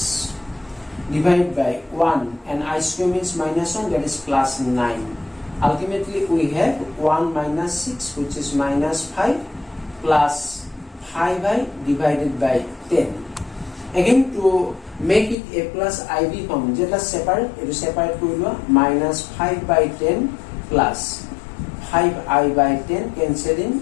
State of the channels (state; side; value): drops out; right; at 15.4 s